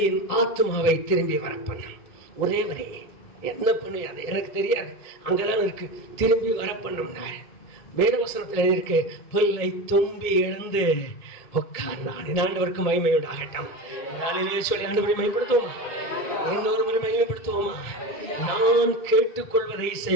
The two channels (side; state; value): right; late; 1.7 ms